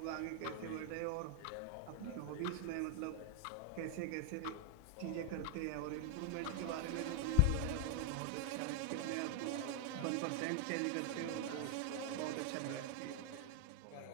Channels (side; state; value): both; different; correlation 0.00